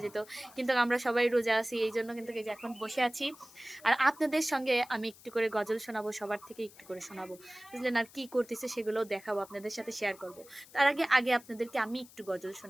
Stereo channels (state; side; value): noise; left; hiss, 22 dB below the sound